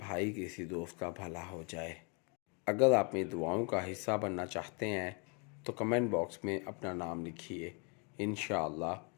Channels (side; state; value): right; quieter; 34.8 dB